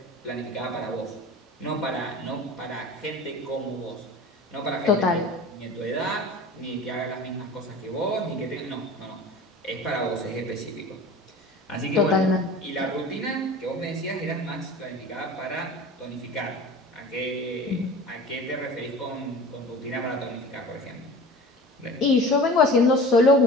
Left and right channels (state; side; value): normal; both; correlation 0.38